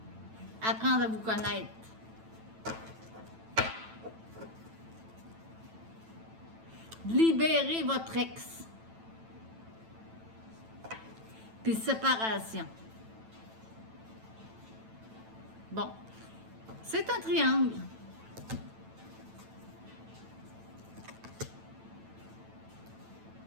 Apprendre à vous connaître. Libérez votre ex. Puis séparation. Bon. C'est un triangle.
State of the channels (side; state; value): left; late; 9.0 ms